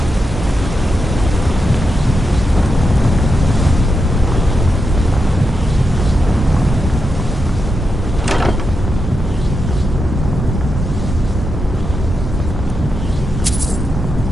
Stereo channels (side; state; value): both; normal; correlation 0.87